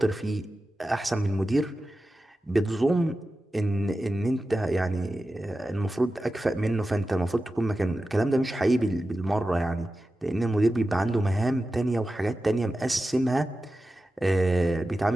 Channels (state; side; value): normal; both; correlation 0.93